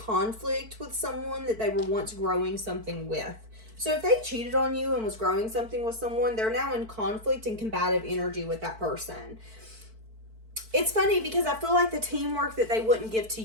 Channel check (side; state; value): left; late; 4.5 ms